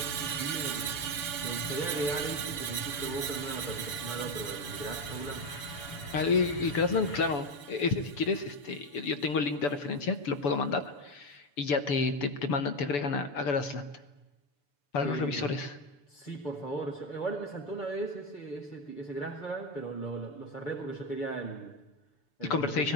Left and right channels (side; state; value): right; late; 6.9 ms